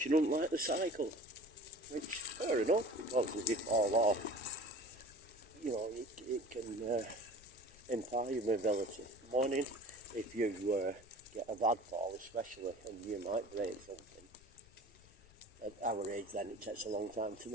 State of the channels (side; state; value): left; noise; rumble, 24 dB below the sound